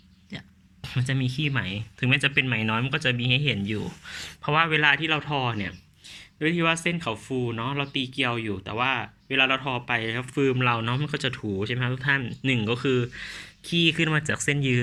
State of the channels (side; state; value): both; identical; correlation 1.00